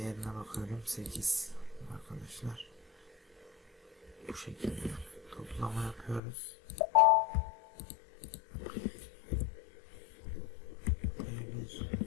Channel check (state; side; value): drops out; right; at 6.2 s